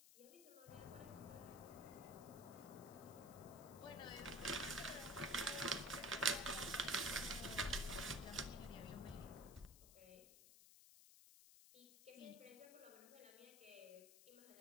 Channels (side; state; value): left; noise; hiss, 17 dB below the sound